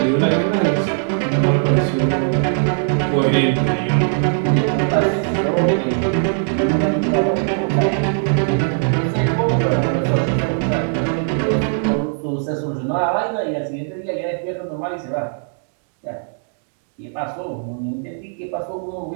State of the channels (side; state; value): left; silent; digital silence